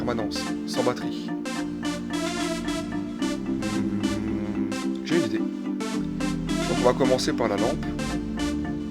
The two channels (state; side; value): identical; both; correlation 1.00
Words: sans batterie. J'ai une idée. Donc on va commencer par la lampe.